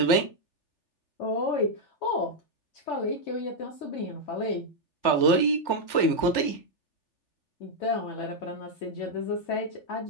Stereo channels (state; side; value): late; right; 3.4 ms